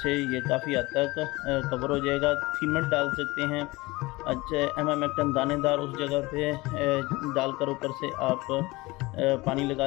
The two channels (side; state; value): right; quieter; 21.7 dB